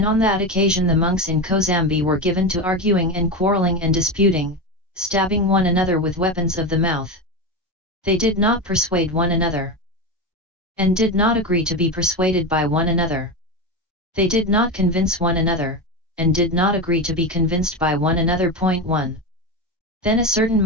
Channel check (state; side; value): normal; both; correlation 0.18